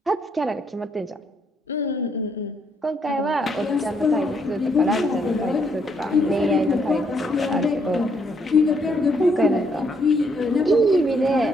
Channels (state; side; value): normal; both; correlation 0.72